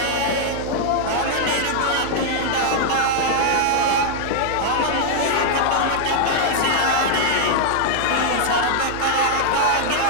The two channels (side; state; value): both; different; correlation -0.01